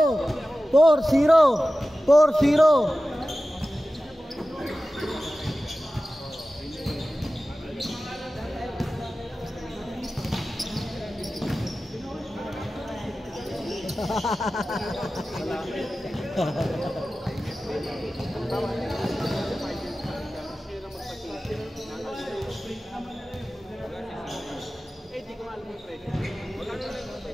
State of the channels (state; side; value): normal; both; correlation 0.95